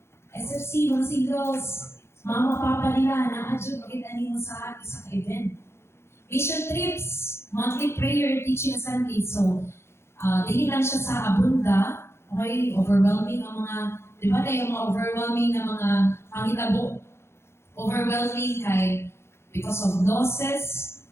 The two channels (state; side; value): late; right; 0.12 ms